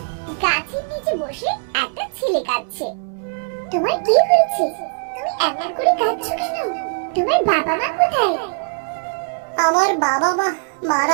গাছের নিচে বসে একটা ছেলে কাঁদছে। তোমার কি হয়েছে? তুমি এমন করে কাঁদছো কেন? তোমার বাবা মা কোথায়? আমার বাবা মা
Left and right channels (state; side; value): silent; left; digital silence